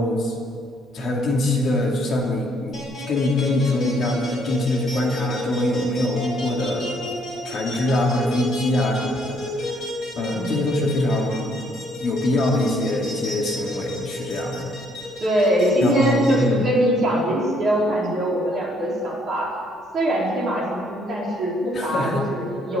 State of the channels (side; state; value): both; normal; correlation 0.67